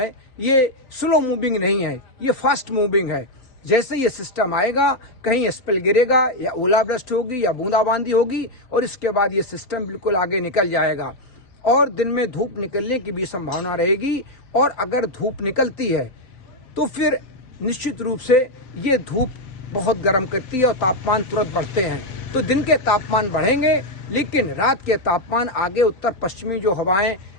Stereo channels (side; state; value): right; late; 3.9 ms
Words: ये स्लो मूविंग नहीं है, ये फास्ट मूविंग है। जैसे ये सिस्टम आएगा, कहीं स्पेल गिरेगा या ओलावृष्टि होगी या बूंदाबांदी होगी और इसके बाद ये सिस्टम बिल्कुल आगे निकल जाएगा और दिन में धूप निकलने की भी संभावना रहेगी। और अगर धूप निकलती है तो फिर निश्चित रूप से ये धूप बहुत गर्म करती है और तापमान तुरंत बढ़ते हैं। तो दिन के तापमान बढ़ेंगे, लेकिन रात के तापमान आगे उत्तर पश्चिमी जो हवाएं